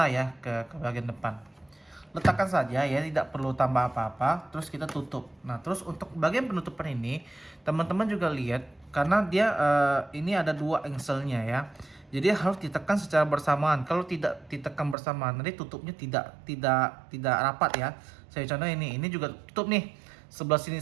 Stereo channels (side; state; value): left; drops out; at 15.0 s